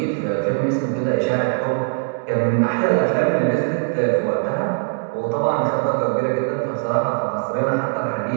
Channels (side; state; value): left; silent; digital silence